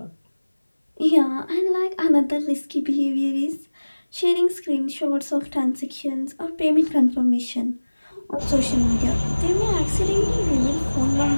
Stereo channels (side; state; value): both; inverted; correlation -1.00